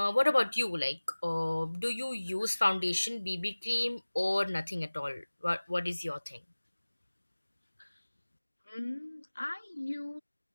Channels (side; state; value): both; inverted; correlation -1.00